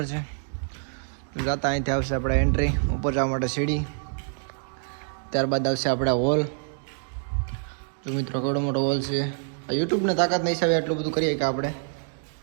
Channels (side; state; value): left; silent; 61 dB below the other